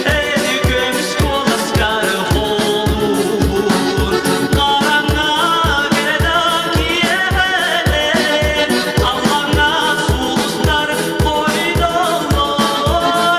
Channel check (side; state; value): both; identical; correlation 1.00